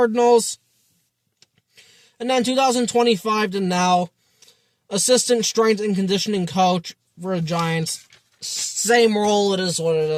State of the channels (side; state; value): both; identical; correlation 1.00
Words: And then 2025 to now, Assistant Strength and Conditioning Coach for the Giants. Same role, it is what it